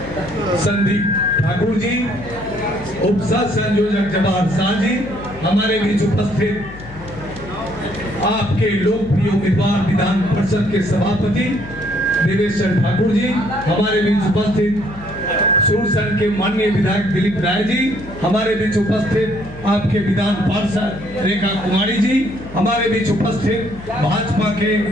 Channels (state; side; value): noise; left; hum, 16 dB below the sound